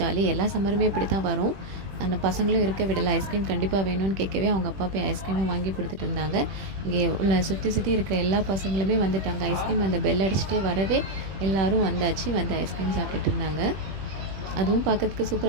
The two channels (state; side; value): late; left; 21 ms